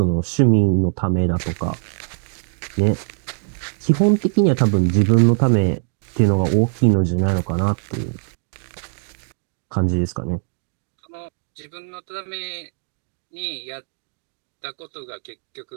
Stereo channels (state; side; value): silent; left; 58 dB below the other